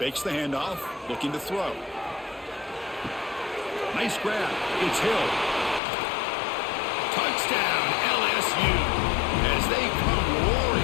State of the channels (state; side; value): drops out; right; at 5.8 s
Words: the handoff. Looking to throw. Nice grab. It's Hill. Touchdown, LSU, as they come